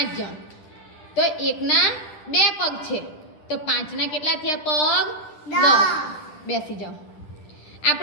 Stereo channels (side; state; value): right; late; 9.9 ms